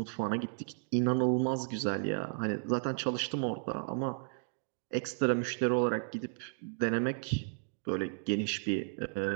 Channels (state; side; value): silent; left; digital silence